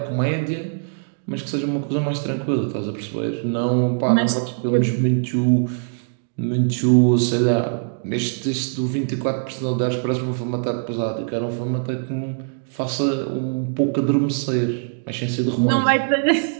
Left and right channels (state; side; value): silent; left; digital silence